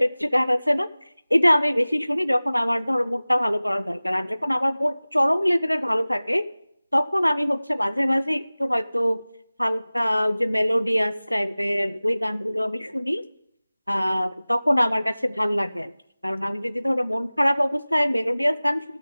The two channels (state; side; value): inverted; both; correlation -0.99